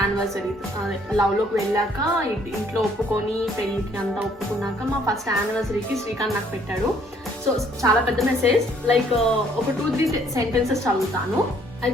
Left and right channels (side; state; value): both; normal; correlation 0.64